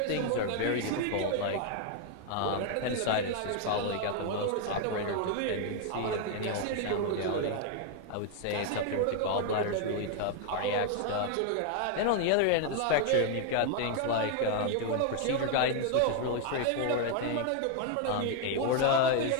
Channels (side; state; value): both; different; correlation 0.00